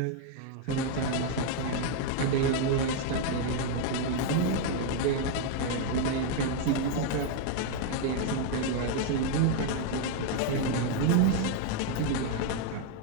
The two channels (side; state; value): both; different; correlation 0.01